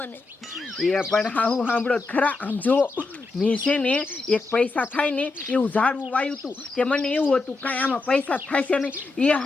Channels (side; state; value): right; quieter; 3.7 dB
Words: એ પણ હાહુ સાંભળો ખરા. આમ જો મેં છે ને એક પૈસા થાય ને એવું ઝાડવું વાયું હતું. તે મને એવું હતું કાંઈ આમાં પૈસા થાય છે નહીં. એ